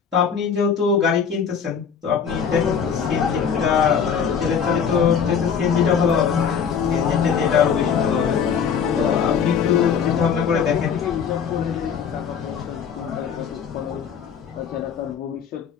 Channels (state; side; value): quieter; right; 7.0 dB